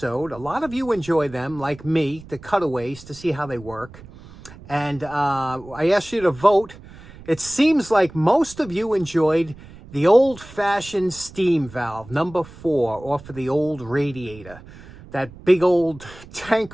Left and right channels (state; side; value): noise; right; rumble, 19 dB below the sound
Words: A lot of you enjoy them, like me, the cutaways, to see how they work. And I asked you to vote. It seems like most of you enjoyed the old-fashioned steam valve, number 4, off of the old radiator. That big old